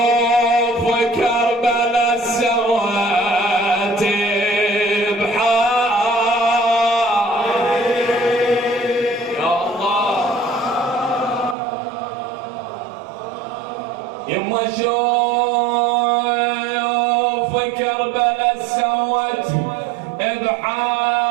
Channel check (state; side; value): drops out; left; at 11.6 s